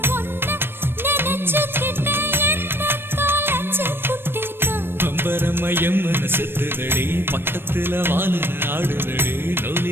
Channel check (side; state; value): left; late; 0.10 ms